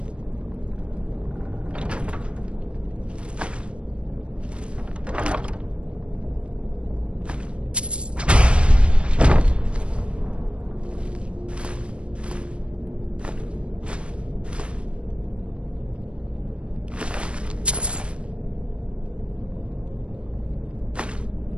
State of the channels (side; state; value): left; late; 0.058 ms